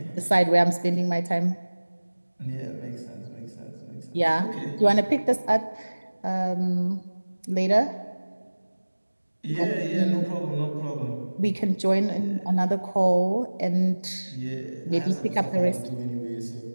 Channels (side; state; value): both; inverted; correlation -1.00